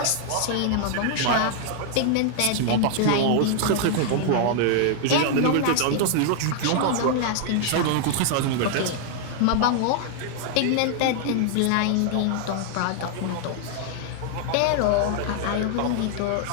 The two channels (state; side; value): different; both; correlation -0.01